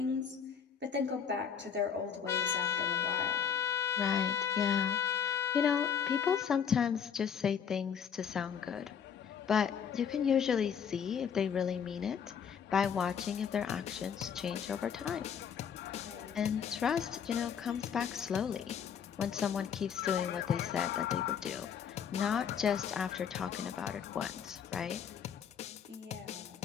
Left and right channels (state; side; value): quieter; right; 7.6 dB